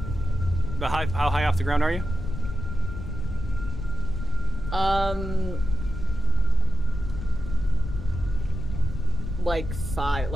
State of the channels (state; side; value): noise; left; rumble, 6 dB below the sound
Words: But how high off the ground are you? Like